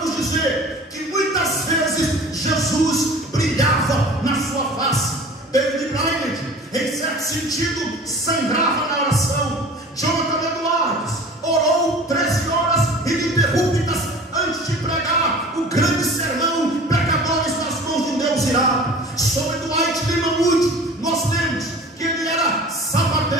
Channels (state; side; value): normal; both; correlation 0.42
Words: dizer que muitas vezes Jesus brilhava na sua face. David Brainerd, em certo sentido, sangrava na oração. Jonathan Edwards orou 13 horas ininterruptas antes de pregar o grande sermão Pecadores nas mãos de um Deus irado. Sobre Dwight Lima Moody, nós lemos que ele era